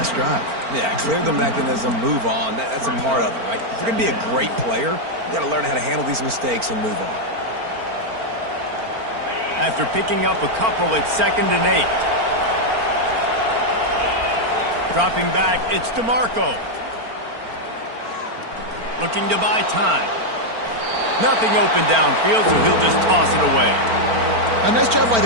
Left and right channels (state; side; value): late; left; 4.4 ms